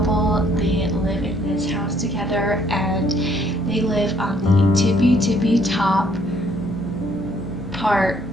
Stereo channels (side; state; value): both; normal; correlation 0.65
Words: They live in this house together and they live on the tippy top part